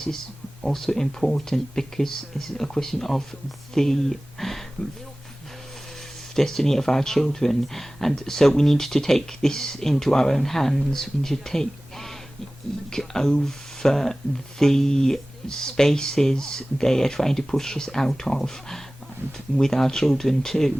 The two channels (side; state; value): both; normal; correlation 0.98